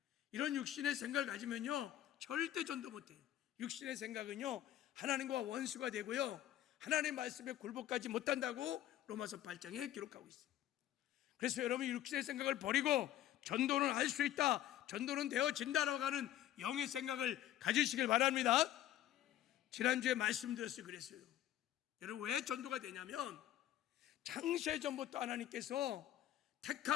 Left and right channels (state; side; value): quieter; right; 12.6 dB